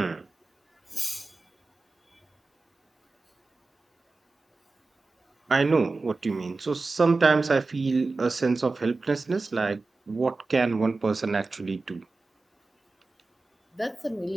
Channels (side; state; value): left; quieter; 3.6 dB